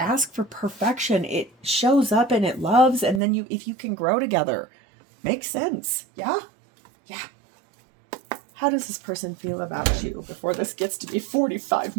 for perfection. It shows up and it loves, and then if you can grow together. Makes sense. Yeah? Yeah. How does this person feel about you before this gets to be 45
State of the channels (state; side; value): drops out; left; at 3.2 s